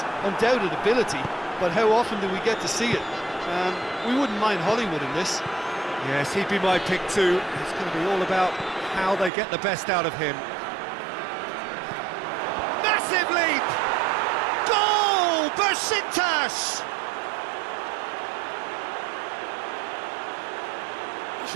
undoubted ability, but how often do we get to see it? We wouldn't mind Hollywood in this. Yes, he'd be my pick too. It's going to be all about how they get the best out of him. Massive leap! Goal! Besiktas!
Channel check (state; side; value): drops out; left; at 9.3 s